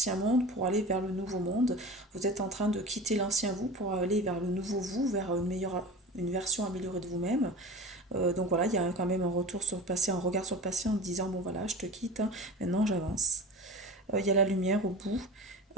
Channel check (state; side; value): normal; both; correlation 0.33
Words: monde pour aller vers le nouveau monde. Vous êtes en train de quitter l'ancien vous pour aller vers le nouveau vous, vers une version améliorée de vous-même. Donc voilà, il y a quand même un retour sur le passé, un regard sur le passé en disant bon voilà, je te quitte, hein, maintenant j'avance. Il y a la lumière au bout.